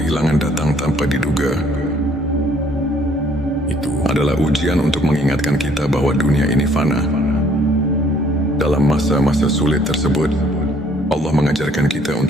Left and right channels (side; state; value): both; normal; correlation 0.62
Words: datang tanpa diduga, itu adalah ujian untuk mengingatkan kita bahwa dunia ini fana. Dalam masa-masa sulit tersebut, Allah mengajarkan kita